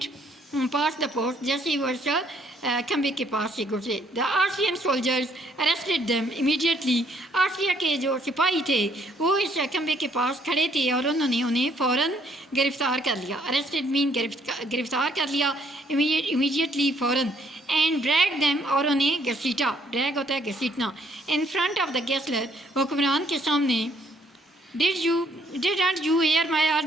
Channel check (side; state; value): both; normal; correlation 0.67